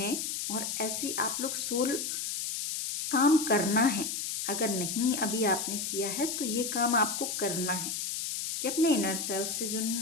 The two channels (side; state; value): left; noise; hiss, 3 dB below the sound